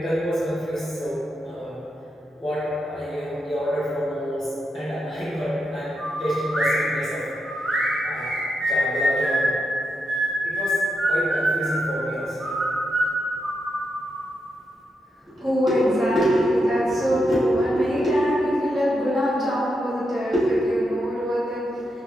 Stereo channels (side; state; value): both; normal; correlation 0.84